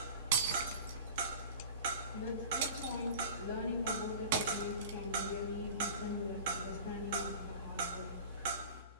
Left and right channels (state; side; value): inverted; both; correlation -0.37